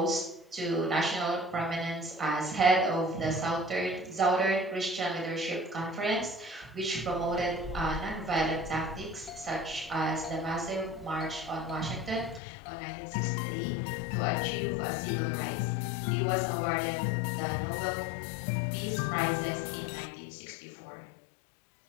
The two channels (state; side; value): drops out; right; at 12.4 s